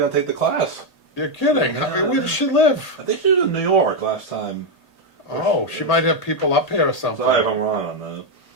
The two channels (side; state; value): right; late; 1.8 ms